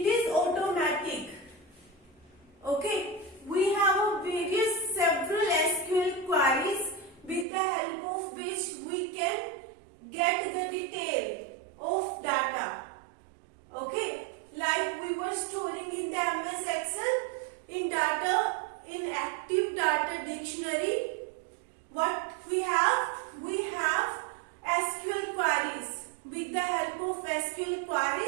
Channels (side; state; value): left; drops out; at 7.5 s